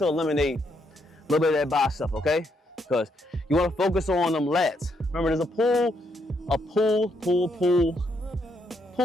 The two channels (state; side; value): normal; both; correlation 0.76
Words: eliminate a little bit of that bicep, okay? Because you wanna focus on them lats. Remember, there's a pull